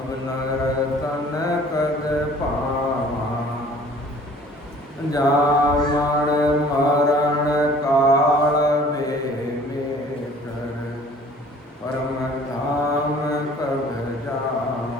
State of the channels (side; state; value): both; normal; correlation 0.51